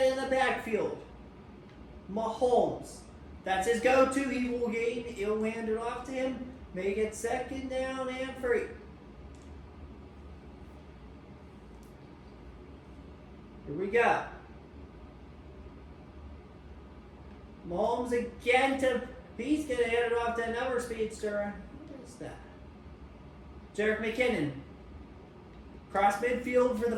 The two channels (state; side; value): identical; both; correlation 1.00